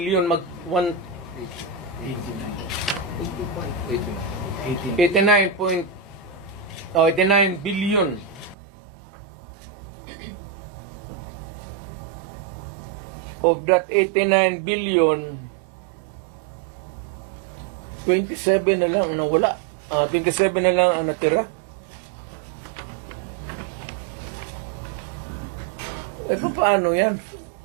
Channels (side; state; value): left; drops out; at 8.6 s